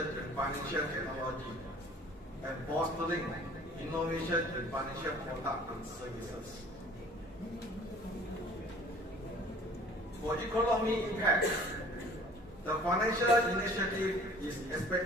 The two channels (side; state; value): both; normal; correlation 0.50